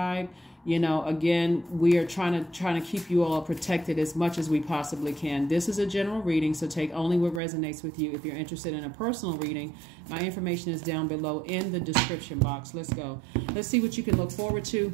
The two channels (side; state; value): left; drops out; at 7.4 s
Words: again, we are trying to keep you all protected as much as we possibly can. This is a general reading, so take only what resonates with you. If you're interested in a personal reading, my information is down below in the description box. Let's go. Let's see what you can look forward to